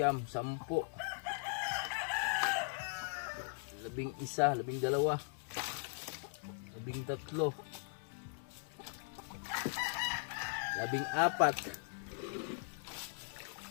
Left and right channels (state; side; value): silent; right; digital silence